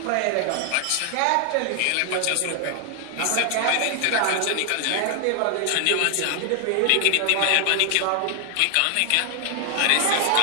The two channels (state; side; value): different; both; correlation 0.00